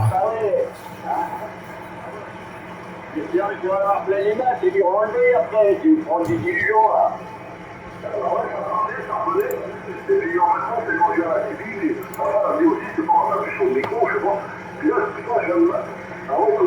Tu vas avoir plein les mains, c'est du renlever après, tu prends des dilutions là. Et puis en même temps, c'est manger à la TV, voilà, mais aussi c'est pas un peu chaud au micro, je sais pas. Puis là, c'est pas, j'aime. Ah ouais,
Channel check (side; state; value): both; identical; correlation 1.00